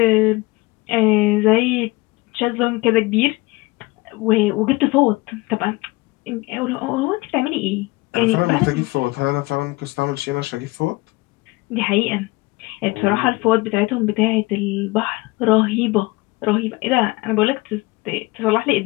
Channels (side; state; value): right; quieter; 22.6 dB